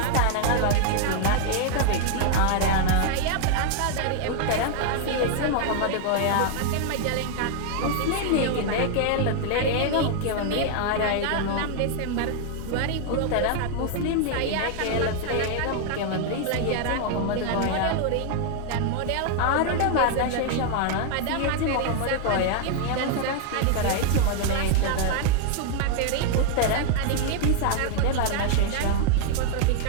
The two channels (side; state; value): both; different; correlation 0.00